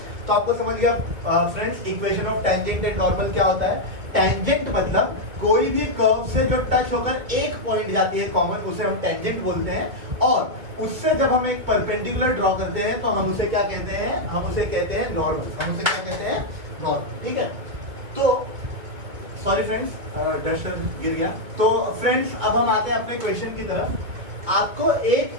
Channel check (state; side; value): late; left; 2.5 ms